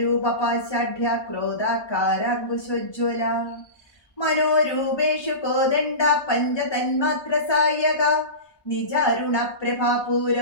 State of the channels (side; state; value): right; late; 1.2 ms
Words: പാശാഢ്യ ക്രോധാകാരാങ്കുശോജ്വല മനോരൂപേഷു കോദണ്ഡ പഞ്ചതന്മാത്ര സായക നിജാരുണ പ്രഭാപൂര